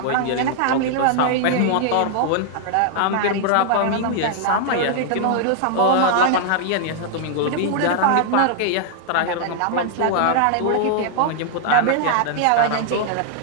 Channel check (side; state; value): both; different; correlation 0.00